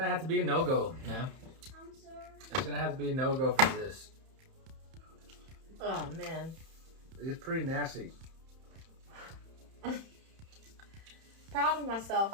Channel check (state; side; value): late; left; 31 ms